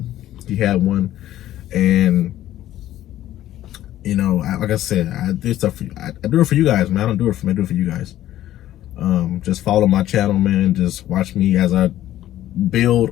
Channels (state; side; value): quieter; right; 13.4 dB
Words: He had one, and you know, like I said, I do stuff for you. I do it for you guys, man. I don't do it for me. I do it for you guys. Just follow my channel, man. Just watch me as I build